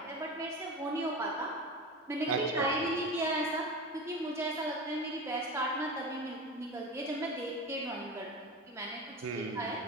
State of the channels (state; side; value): normal; both; correlation 0.29